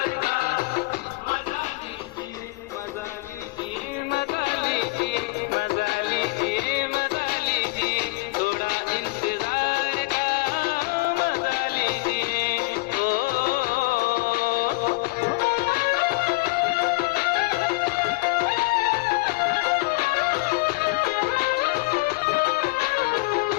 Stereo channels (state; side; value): quieter; right; 24.3 dB